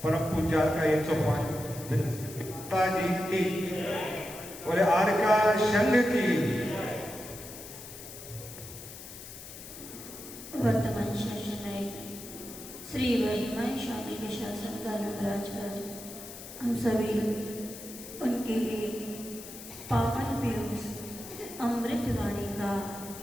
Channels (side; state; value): left; noise; hiss, 13 dB below the sound